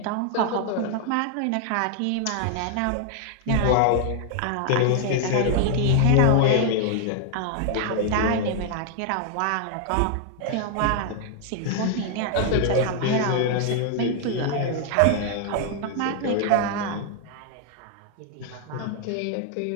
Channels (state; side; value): different; both; correlation 0.00